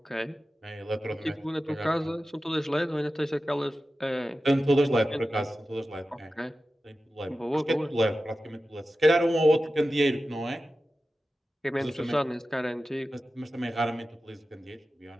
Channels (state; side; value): normal; both; correlation 0.94